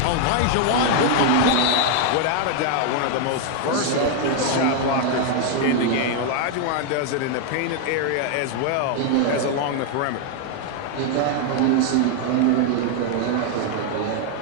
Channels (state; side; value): different; both; correlation 0.00